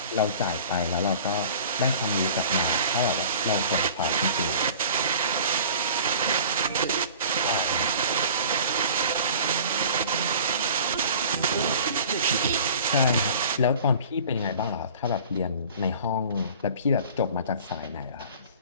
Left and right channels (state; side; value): inverted; both; correlation -0.44